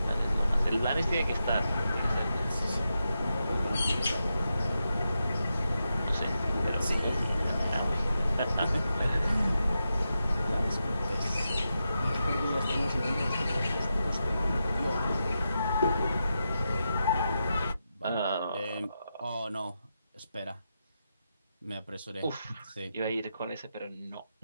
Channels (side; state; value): both; inverted; correlation -0.88